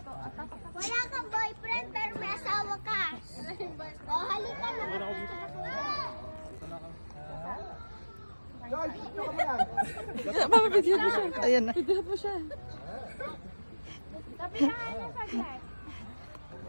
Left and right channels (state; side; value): inverted; both; correlation -1.00